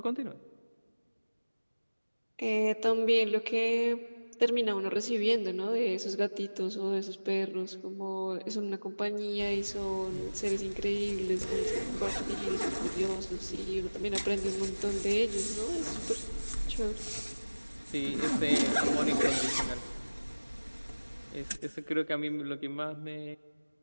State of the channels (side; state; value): both; inverted; correlation -1.00